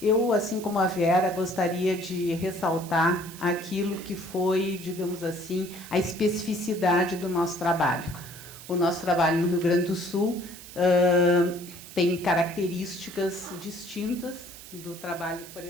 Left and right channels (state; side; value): noise; right; hiss, 16 dB below the sound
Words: eu, assim como a Vera, gostaria de ressaltar aquilo que foi, digamos assim, a especificidade do nosso trabalho. O nosso trabalho no Rio Grande do Sul tem características distintas do trabalho, por